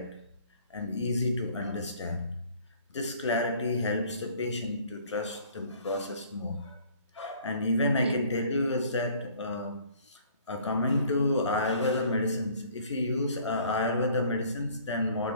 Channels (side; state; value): both; inverted; correlation -0.55